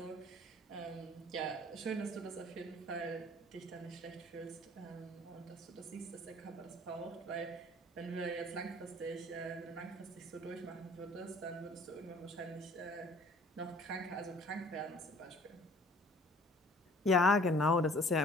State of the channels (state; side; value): normal; both; correlation 0.52